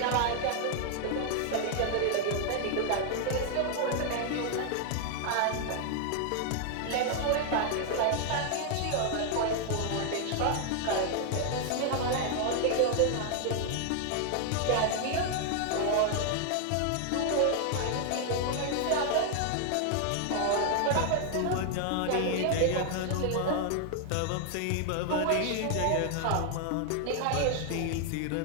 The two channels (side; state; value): both; different; correlation 0.00